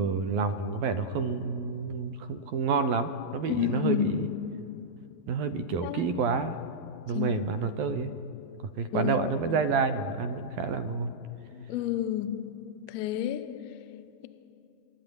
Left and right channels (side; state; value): left; late; 12 ms